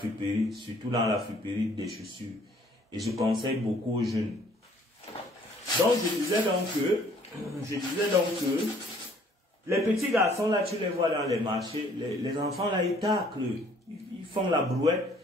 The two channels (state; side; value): normal; both; correlation 0.60